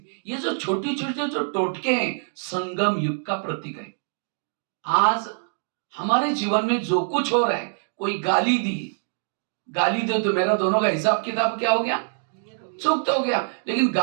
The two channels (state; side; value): silent; left; digital silence